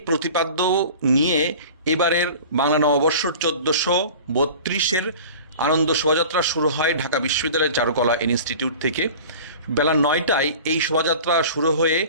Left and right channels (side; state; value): both; inverted; correlation -0.40